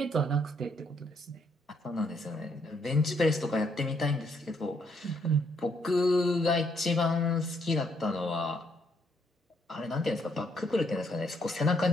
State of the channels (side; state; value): both; normal; correlation 0.72